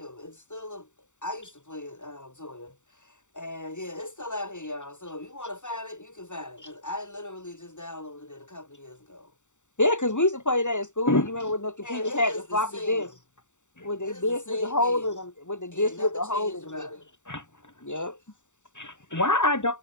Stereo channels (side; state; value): right; late; 0.84 ms